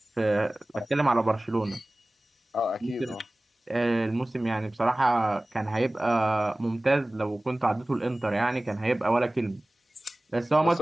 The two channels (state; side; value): normal; both; correlation 0.98